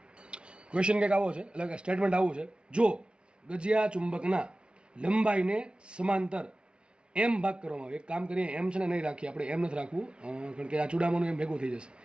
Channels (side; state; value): left; late; 0.057 ms